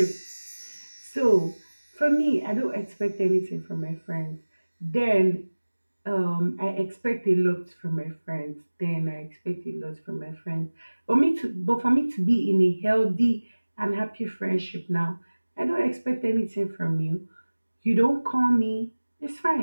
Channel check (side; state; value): both; inverted; correlation -1.00